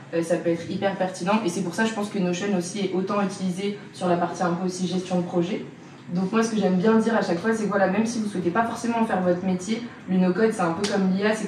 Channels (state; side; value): identical; both; correlation 1.00